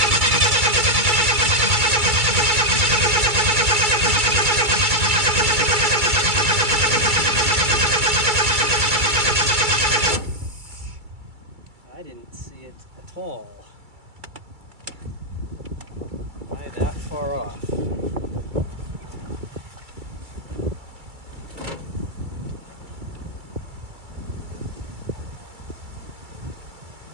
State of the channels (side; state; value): left; late; 2.2 ms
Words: I didn't see it at all. Why that far off?